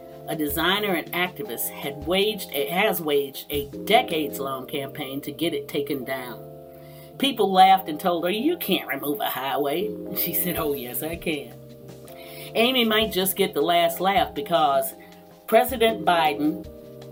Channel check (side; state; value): both; identical; correlation 1.00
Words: a designer and activist, has waged a decades-long campaign to get it taken down. People laughed and told her, "You can't remove a highway." She said, "Oh yes, I can." Amy might just get the last laugh because President Biden